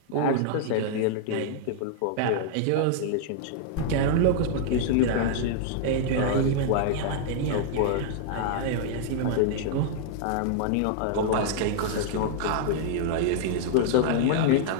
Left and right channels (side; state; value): both; different; correlation -0.01